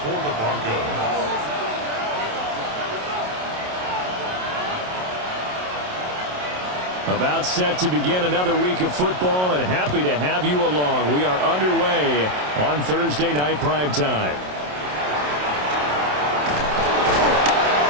the Broncos. About set to begin another week of football, and happy to have you along. We are underway on Thursday night primetime.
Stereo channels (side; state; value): left; late; 27 ms